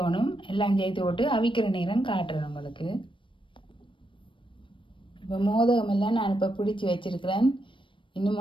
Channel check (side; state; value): right; late; 0.25 ms